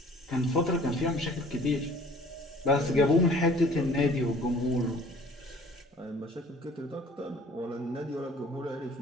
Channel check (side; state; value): both; normal; correlation 0.51